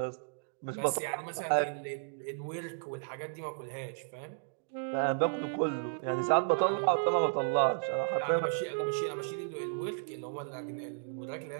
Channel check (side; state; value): left; silent; digital silence